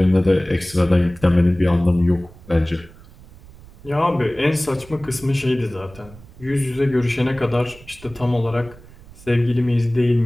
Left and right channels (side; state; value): right; noise; rumble, 21 dB below the sound